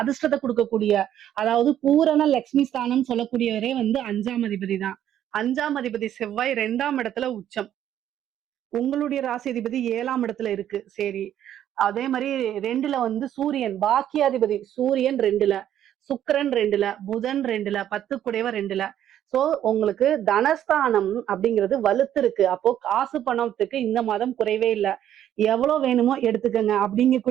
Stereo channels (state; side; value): quieter; left; 11.0 dB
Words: கொடுக்கக்கூடிய, அதாவது பூரண லட்சுமி ஸ்தானம் சொல்லக்கூடியவரே 5ஆம் அதிபதி தான். 5ஆம் அதிபதி செவ்வாய் 2ஆம் இடத்துல உச்சம். உங்களுடைய ராசி அதிபதி 7ஆம் இடத்துல இருக்கு. சரி, அதே மாதிரி 2ல சூரியன் பாக்கியாதிபதி சூரியன் 2ல, சுக்கிரன் 2ல, புதன் 2ல, 10 குடையவர் 2ல. சோ உங்களுக்கு தனஸ்தானம் அப்படிங்கிறது வலுத்து இருக்கு. அப்போ காசு பணத்துக்கு இந்த மாதம் குறைவே இல்லை. எவ்வளவு வேணுமோ எடுத்துக்கங்க